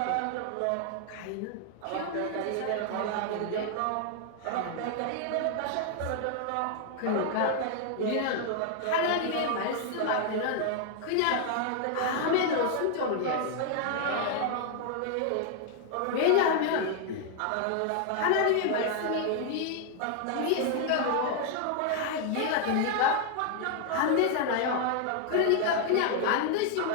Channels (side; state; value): both; different; correlation 0.00